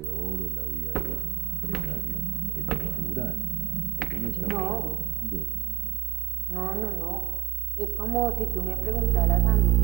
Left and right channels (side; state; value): left; quieter; 17.0 dB